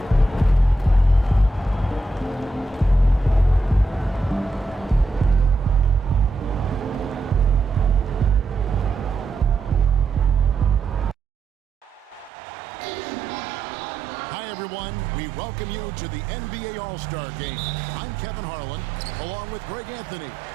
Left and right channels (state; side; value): drops out; left; at 12.3 s